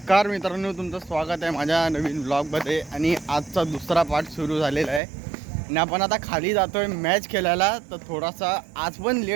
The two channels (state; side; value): drops out; left; at 5.0 s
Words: मित्रांनो, तुमचं स्वागत आहे माझ्या नवीन ब्लॉगमध्ये. आणि आजचा दुसरा पार्ट सुरू झालेला आहे आणि आपण आता खाली जातोय मॅच खेळायला. तर थोडासा आज पण